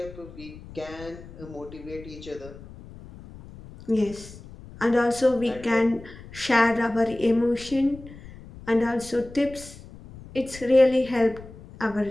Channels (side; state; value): left; noise; rumble, 17 dB below the sound